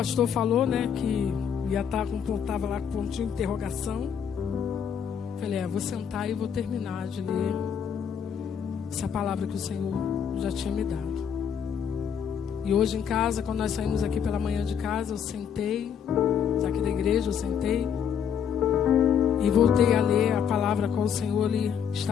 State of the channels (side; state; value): right; quieter; 7.9 dB